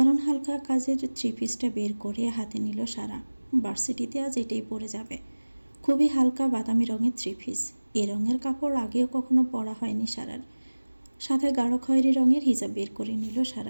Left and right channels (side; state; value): both; inverted; correlation -1.00